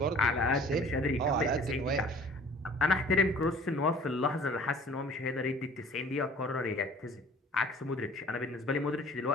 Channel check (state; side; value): normal; both; correlation 0.49